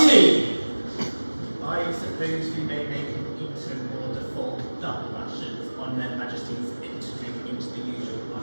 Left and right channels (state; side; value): inverted; both; correlation -1.00